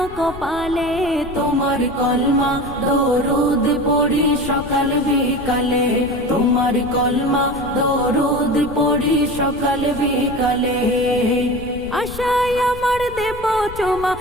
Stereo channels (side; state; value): left; noise; rumble, 14 dB below the sound